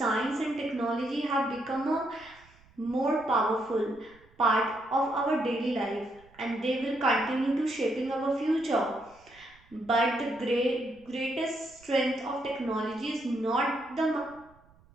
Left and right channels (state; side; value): noise; right; rumble, 28 dB below the sound